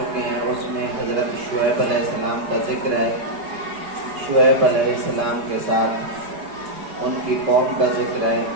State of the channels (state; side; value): late; left; 4.9 ms